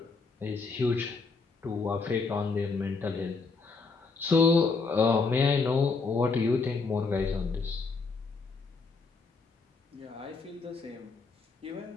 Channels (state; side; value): quieter; right; 4.4 dB